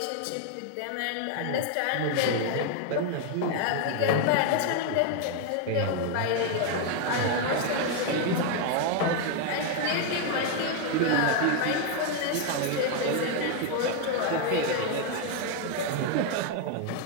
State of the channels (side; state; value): both; different; correlation 0.01